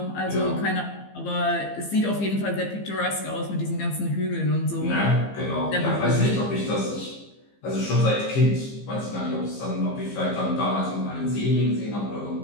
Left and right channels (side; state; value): right; late; 15 ms